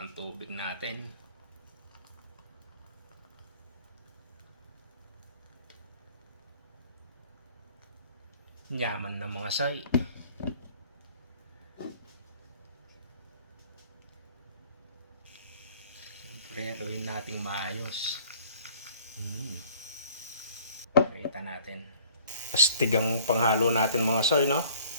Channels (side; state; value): both; inverted; correlation -0.53